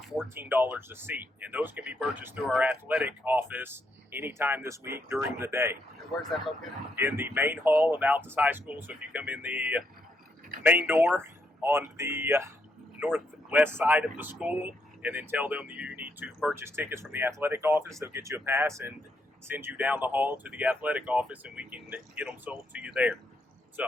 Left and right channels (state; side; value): normal; both; correlation 0.77